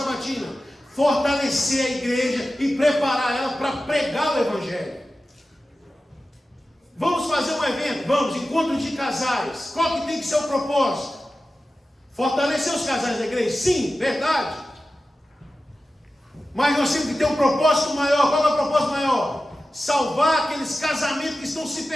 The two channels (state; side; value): normal; both; correlation 0.94